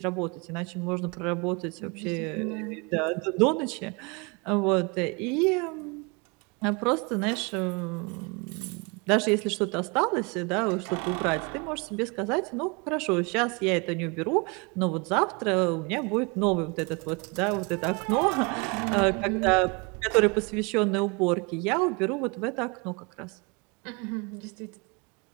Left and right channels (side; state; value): left; quieter; 29.9 dB